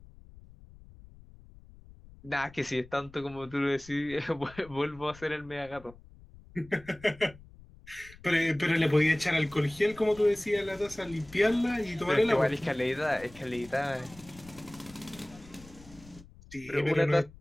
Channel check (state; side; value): noise; left; rumble, 21 dB below the sound